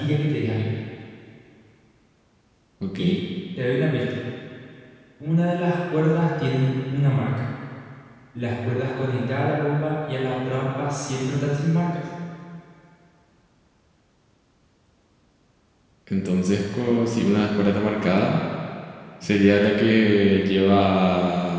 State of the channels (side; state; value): both; identical; correlation 1.00